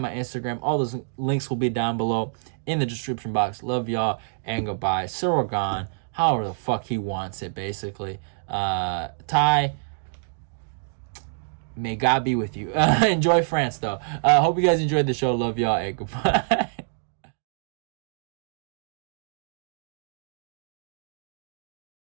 my Instagram. All those links will be down below in the description box. Love y'all and goodbye. Ciryl Gane, however the fuck he wants it, basically. Tai, may God be with you. Enjoy France, though. Hope you guys enjoyed the show. Love y'all and goodbye.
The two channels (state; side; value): silent; left; digital silence